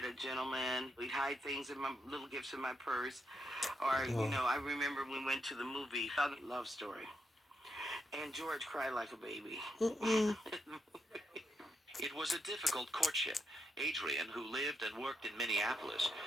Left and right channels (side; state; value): both; normal; correlation 0.82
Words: a gentleman. He'd hide things in my little gifts in my purse. Or, you know, I remember we went to the movie, Love Story. And George cried like a baby. It was a difficult courtship. Adrian, who lived and worked in Minneapolis,